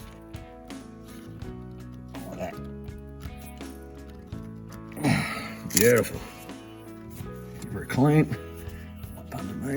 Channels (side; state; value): both; identical; correlation 1.00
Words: Like that. Beautiful. Give her a clean. Up